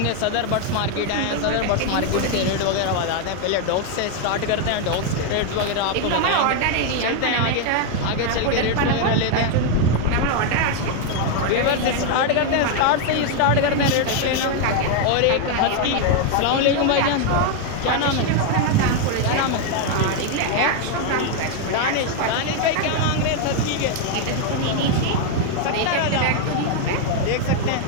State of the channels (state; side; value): different; both; correlation 0.01